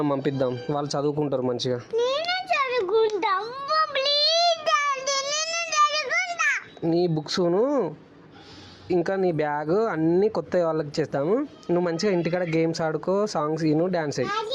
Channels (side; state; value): both; identical; correlation 1.00